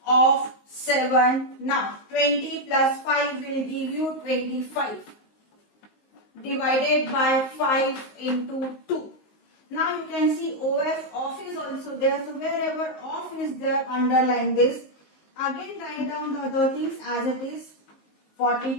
of 7. Now 20 plus 5 will give you 25. Divided by 5 into 2. Now you can see OF off is also there. So wherever off is there, underline this. Again write down the other things as it is.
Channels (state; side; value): late; right; 19 ms